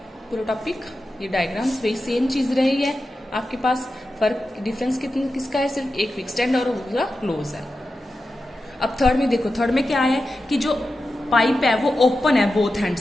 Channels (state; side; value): normal; both; correlation 0.91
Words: पूरा टॉपिक, ये डायग्राम्स वही सेम चीज रही है आपके पास, फर्क डिफरेंस किसका है, सिर्फ एक फिक्स्ड एंड और दूसरा क्लोज है। अब थर्ड में देखो, थर्ड में क्या है कि जो पाइप है वो ओपन है बोथ हैंड